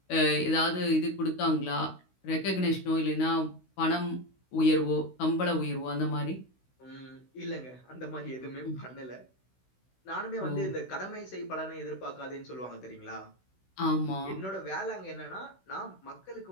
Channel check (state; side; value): late; right; 16 ms